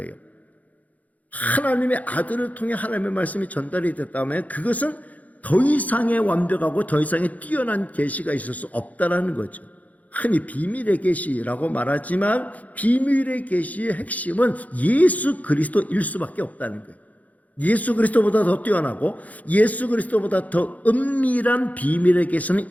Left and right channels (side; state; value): right; late; 0.074 ms